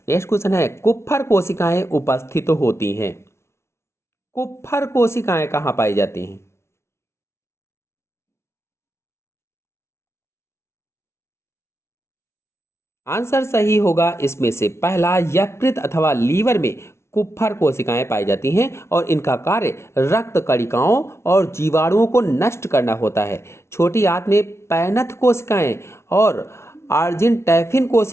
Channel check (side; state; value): right; late; 0.13 ms